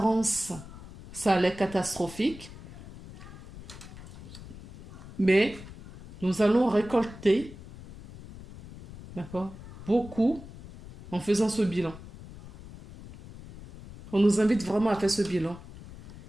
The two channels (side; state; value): left; noise; rumble, 16 dB below the sound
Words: ça a l'air catastrophique. Mais nous allons récolter, d'accord, beaucoup en faisant ce bilan. On nous invite vraiment à faire ce bilan.